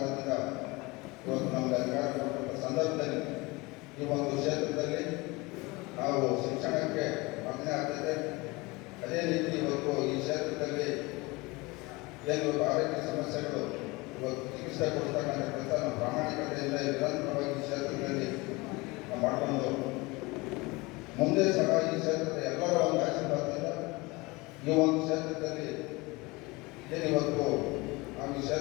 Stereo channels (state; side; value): quieter; right; 23.9 dB